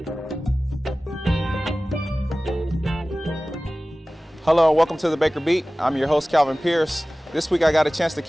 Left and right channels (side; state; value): both; normal; correlation 0.97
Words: Hello and welcome to the Baker Beat. I'm your host, Calvin Pearce. This week I got a chance to